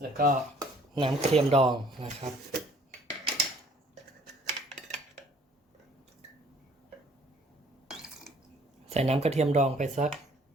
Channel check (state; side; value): normal; both; correlation 0.57